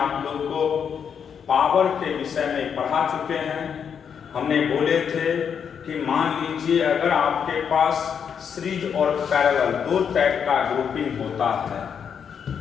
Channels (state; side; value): quieter; right; 7.3 dB